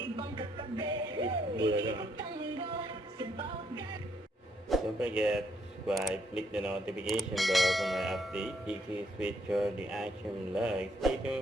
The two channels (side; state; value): both; normal; correlation 0.73